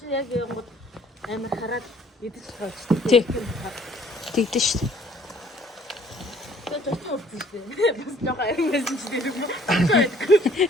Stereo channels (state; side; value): normal; both; correlation 0.58